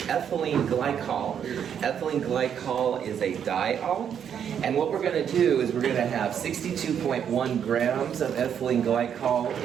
ethylene glycol. Ethylene glycol is a diol, and what we're going to do is we're going to have 62.1 grams of ethylene glycol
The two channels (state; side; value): quieter; left; 8.4 dB